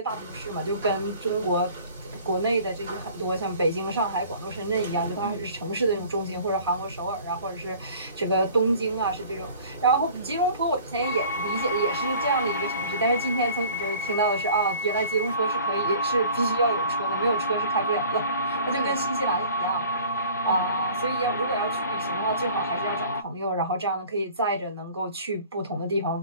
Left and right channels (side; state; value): both; inverted; correlation -0.48